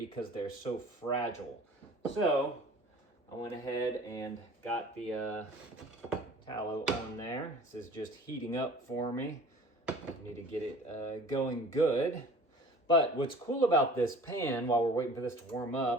they're so fragile. So I went ahead and got the tallow on there. This is just heating up for me. I need to get it going good. But what's cool about this pan, while we're waiting for this to warm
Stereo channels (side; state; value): both; normal; correlation 0.46